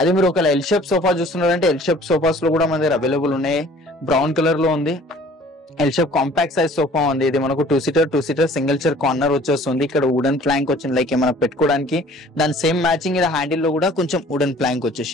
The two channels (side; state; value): both; normal; correlation 0.52